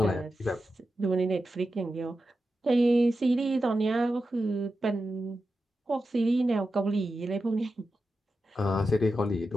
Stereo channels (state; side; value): normal; both; correlation 0.90